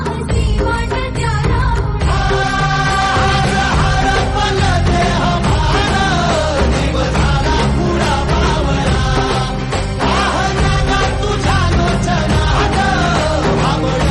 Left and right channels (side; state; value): both; identical; correlation 1.00